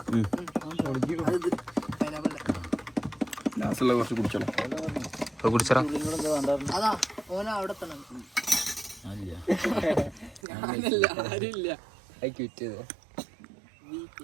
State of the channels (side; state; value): left; drops out; at 10.4 s